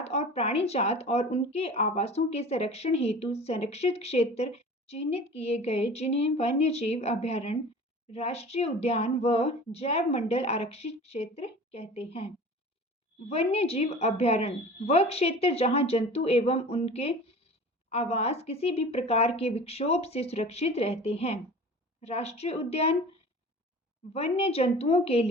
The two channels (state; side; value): normal; both; correlation 0.40